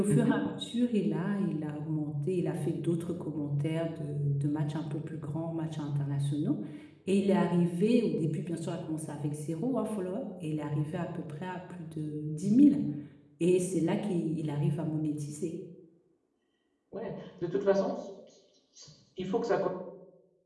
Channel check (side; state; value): both; identical; correlation 1.00